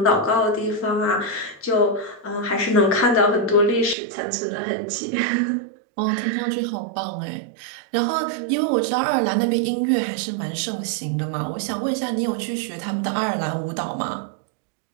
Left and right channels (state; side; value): drops out; left; at 4.0 s